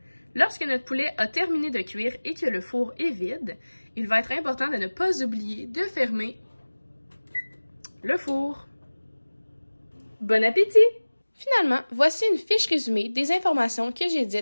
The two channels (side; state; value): both; inverted; correlation -1.00